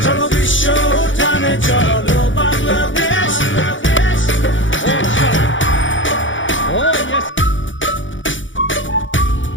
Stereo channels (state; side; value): late; right; 0.56 ms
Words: চলো বিশ্ব উঠানে চলো Bangladesh Oh, shot. Oh, yes.